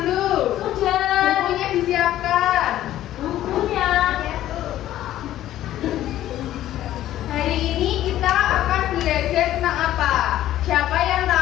Sudah. Bukunya disiapkan. Bukunya. Hari ini kita akan belajar tentang apa? Siapa yang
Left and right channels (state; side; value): quieter; right; 13.3 dB